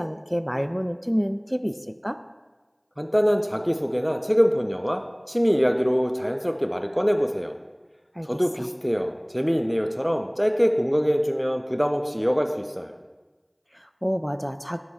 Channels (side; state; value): both; identical; correlation 1.00